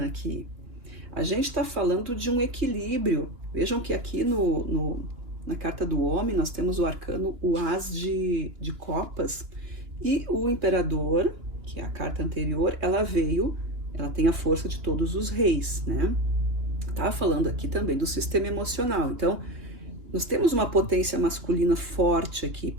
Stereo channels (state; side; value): late; left; 3.1 ms